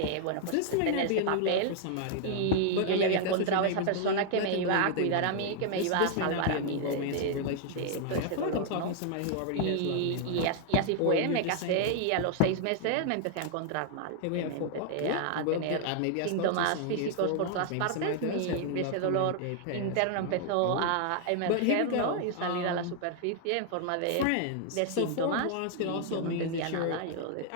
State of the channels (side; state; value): both; different; correlation 0.00